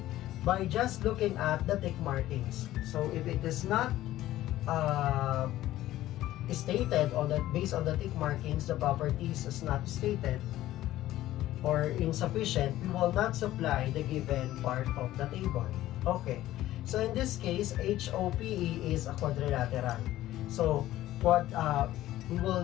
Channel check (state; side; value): quieter; right; 14.7 dB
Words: by just looking at the tick markings. So if it is not stated on the based on the tick markings, the properties is not stated or insufficient, we will not supply the given part of the table. Okay, so in this case, HOPE is a quadrilateral. So what